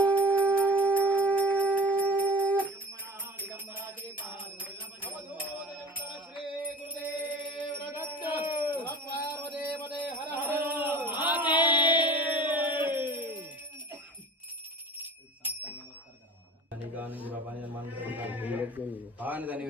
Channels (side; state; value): both; normal; correlation 0.39